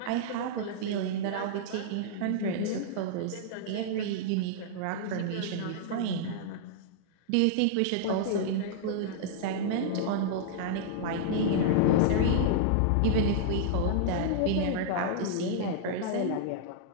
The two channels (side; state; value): both; different; correlation -0.02